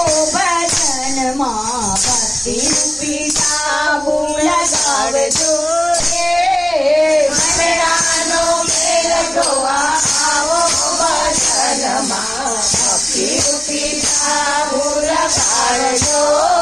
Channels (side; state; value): right; noise; hum, 26 dB below the sound